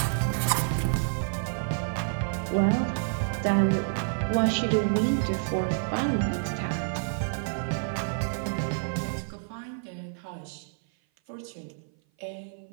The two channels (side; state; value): left; silent; 56 dB below the other